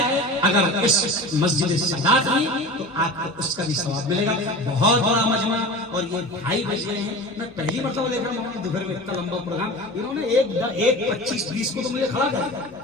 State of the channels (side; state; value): left; noise; hum, 28 dB below the sound